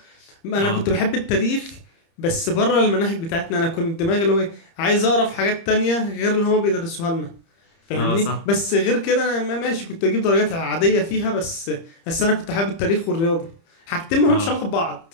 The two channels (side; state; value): right; late; 30 ms